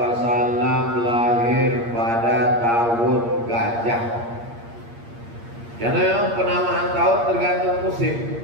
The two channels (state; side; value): late; left; 8.6 ms